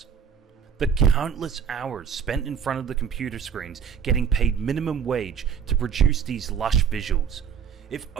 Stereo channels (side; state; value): left; quieter; 7.4 dB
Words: The countless hours spent in front of the computer screens getting paid minimum wage to produce these lush visuals. If